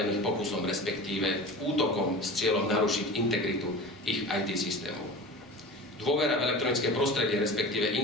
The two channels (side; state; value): both; normal; correlation 0.34